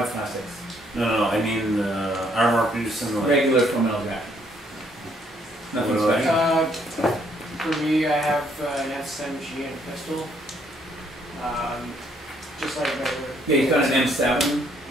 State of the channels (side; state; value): both; normal; correlation 0.68